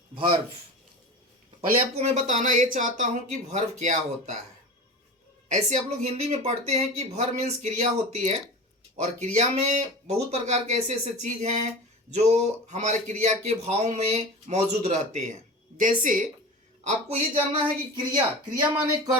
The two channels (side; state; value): both; normal; correlation 0.32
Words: verb. पहले आपको मैं बताना ये चाहता हूँ कि verb क्या होता है। ऐसे आप लोग हिंदी में पढ़ते हैं कि verb मीन्स क्रिया होती है, और क्रिया में बहुत प्रकार के ऐसे ऐसे चीज़ हैं जो हमारे क्रिया के भाव में मौजूद रहते हैं। जैसे आपको ये जानना है कि क्रिया माने